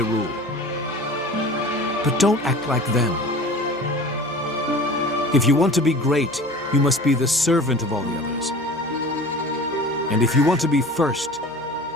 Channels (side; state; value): right; noise; hum, 24 dB below the sound